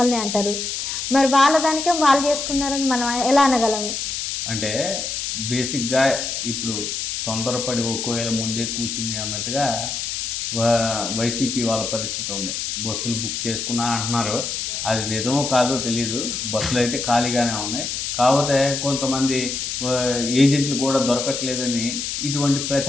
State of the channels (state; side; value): noise; left; hiss, 3 dB below the sound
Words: అంటారు. మరి వాళ్ళ దానికే వాళ్ళు చేసుకున్నారని మనం ఎలా అనగలము? అంటే బేసిక్గా ఇప్పుడు తొందరపడి ఒకవేళ ముందే కూసింది అన్నట్టుగా వైసీపీ వాళ్ళ పరిస్థితి ఉంది. బస్సులు బుక్ చేసుకున్నా అంటున్నారు, అది నిజమో కాదో తెలియదు. బస్సులు అయితే ఖాళీగానే ఉన్నాయి. కాకపోతే కొంతమంది ఏజెంట్లు కూడా దొరకట్లేదని ఇటువంటి